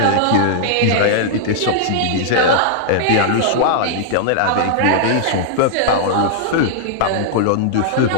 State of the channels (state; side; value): different; both; correlation -0.01